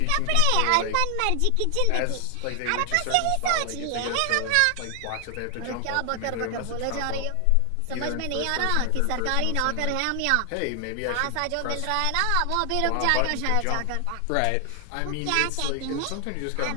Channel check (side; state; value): both; different; correlation 0.00